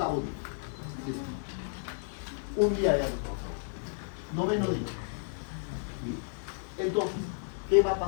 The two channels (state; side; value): silent; right; digital silence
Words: día. Listo. Un día de agricultura. Noveno día. Entonces, ¿qué va a